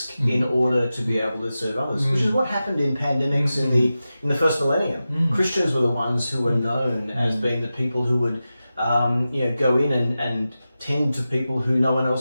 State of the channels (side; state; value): both; inverted; correlation -0.93